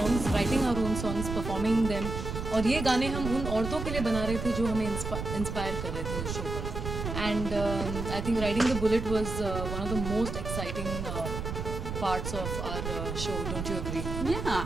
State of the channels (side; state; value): right; noise; rumble, 5 dB below the sound